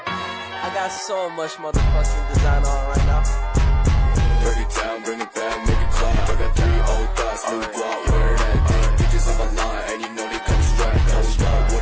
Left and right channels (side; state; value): both; identical; correlation 1.00